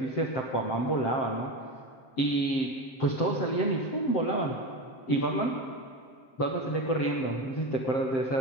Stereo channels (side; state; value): right; late; 7.6 ms